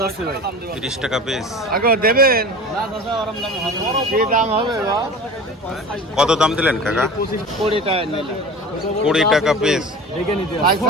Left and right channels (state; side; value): normal; both; correlation 0.36